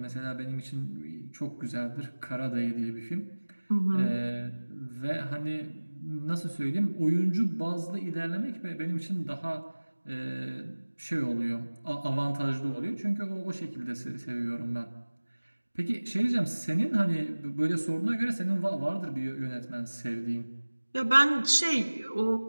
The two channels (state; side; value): inverted; both; correlation -1.00